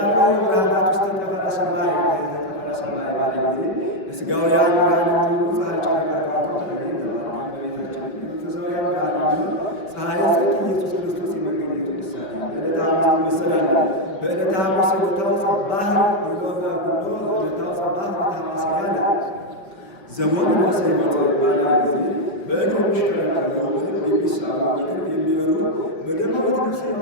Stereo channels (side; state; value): right; late; 5.3 ms